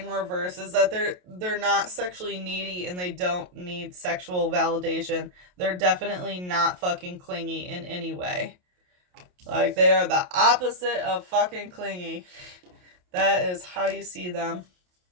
reverse is that they're not sexually needy and they don't need sexual validation. They're definitely not fucking clingy in any way. Like they are the opposite of fucking clingy. That is how you see them.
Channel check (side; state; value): left; late; 28 ms